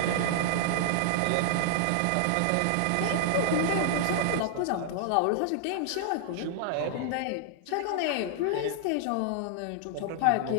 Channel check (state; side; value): different; both; correlation -0.01